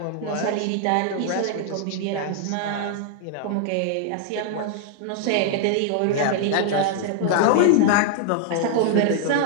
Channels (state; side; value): different; both; correlation -0.01